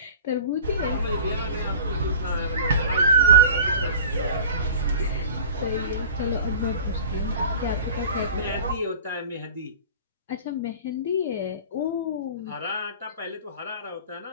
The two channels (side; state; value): both; inverted; correlation -0.40